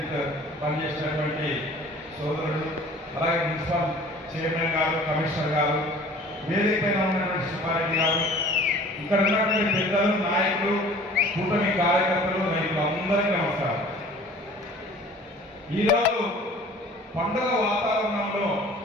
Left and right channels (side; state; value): both; normal; correlation 0.47